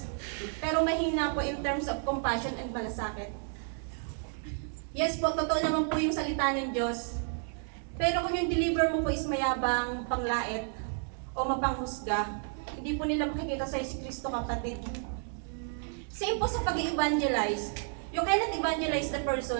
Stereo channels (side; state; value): left; silent; 57 dB below the other